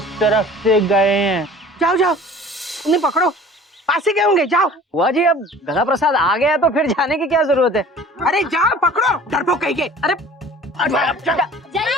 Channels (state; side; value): normal; both; correlation 0.46